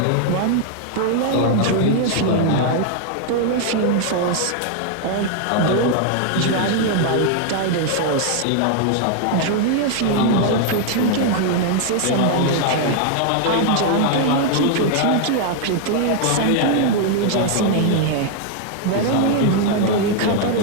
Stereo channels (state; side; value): different; both; correlation 0.00